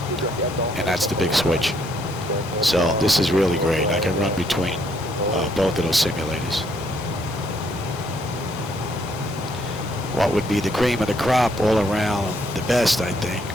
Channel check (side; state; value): both; normal; correlation 0.70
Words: And that's the big switch. So this is really great. I can run between both of those simulators. What would be the cream of the crop all around the best, I think,